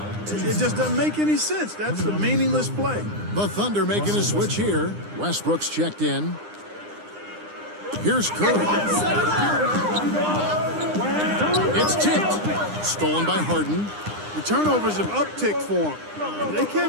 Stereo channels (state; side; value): late; left; 9.8 ms